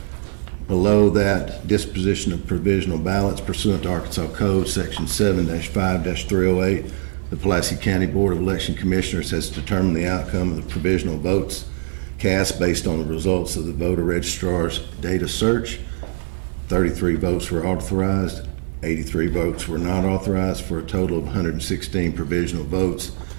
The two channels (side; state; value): left; silent; 64 dB below the other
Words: below that, disposition of provisional ballots pursuant to Arkansas Code, Section 7-5-308. The Pulaski County Board of Election Commissioners has determined the outcome of the provisional votes cast based on the results of the voter registrar's data search. 33 votes were authorized, 83 votes were not authorized, for a total of 116 provisional votes